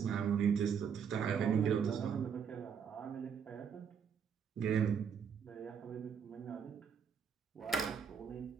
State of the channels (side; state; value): left; quieter; 7.1 dB